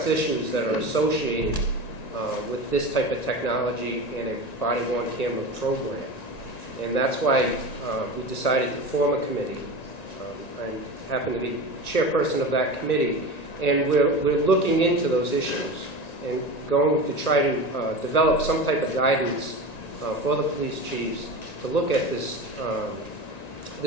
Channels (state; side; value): late; right; 1.9 ms